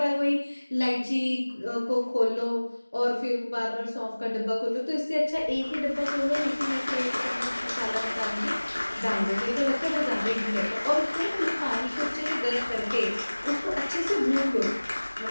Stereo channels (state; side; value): inverted; both; correlation -1.00